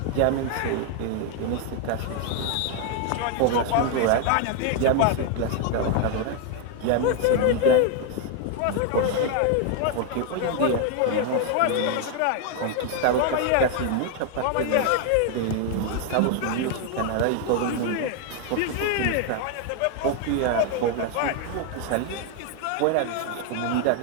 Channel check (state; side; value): different; both; correlation 0.01